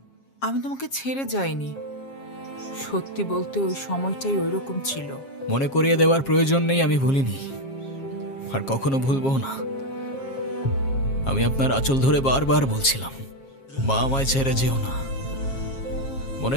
আমি তোমাকে ছেড়ে যাইনি, সত্যি বলতে ওই সময়টাই ওইরকম ছিল। মনে করিয়ে দেওয়ার প্রয়োজন নেই, আমি ভুলিনি আর কখনো ভুলবো না। আমি আপনার আঁচল ধরে বারবার বলছিলাম, মা আমায় ছেড়ে যেও না, মনে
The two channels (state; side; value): late; right; 7.4 ms